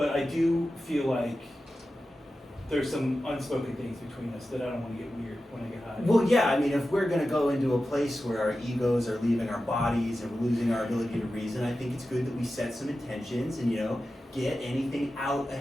I do feel like there's some unspoken things between us that I don't want to get weird when I get high. Well, yeah, I mean, if we're gonna go into a place where our egos are leaving our bodies and we're losing our ability to reason, I think it's good that we set some intentions and, get anything out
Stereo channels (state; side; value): normal; both; correlation 0.93